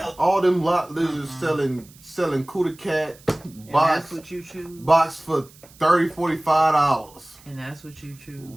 All them lot lizards selling Cuda Cat box. That's what you choose. Box for $30-$45. And that's what you choose.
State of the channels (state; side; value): noise; right; hiss, 25 dB below the sound